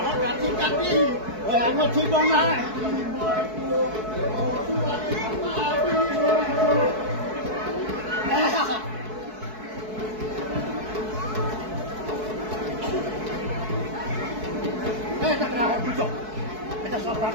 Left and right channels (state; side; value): late; left; 4.6 ms